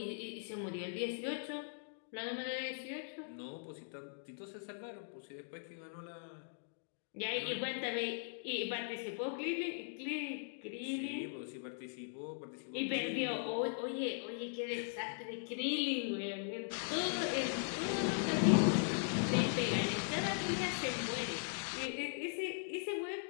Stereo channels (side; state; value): right; silent; digital silence